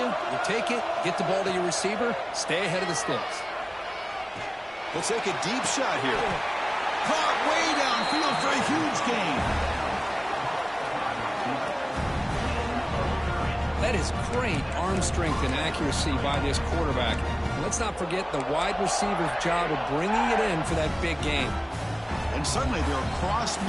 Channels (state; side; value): identical; both; correlation 1.00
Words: You take it, get the ball to your receiver, stay ahead of the sticks. We'll take a deep shot here. Caught way downfield for a huge gain. That is great arm strength and accuracy by this quarterback. And let's not forget the wide receiver's job of bringing it in for that big game. And suddenly they're across